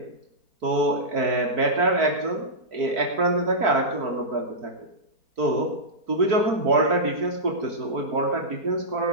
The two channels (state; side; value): late; left; 4.5 ms